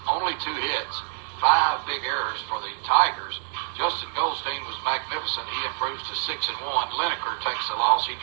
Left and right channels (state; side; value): silent; left; 61 dB below the other